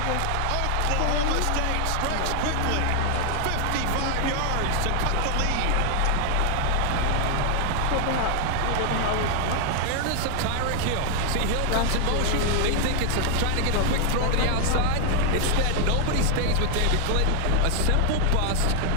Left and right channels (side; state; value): both; different; correlation 0.00